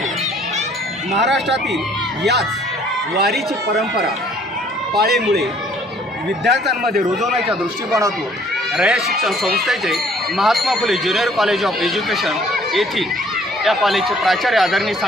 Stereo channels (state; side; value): normal; both; correlation 0.59